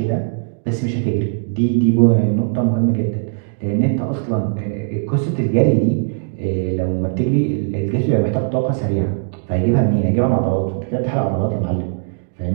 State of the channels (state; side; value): silent; left; digital silence